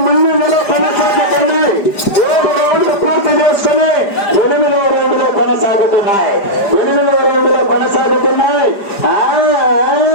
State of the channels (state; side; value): late; right; 5.0 ms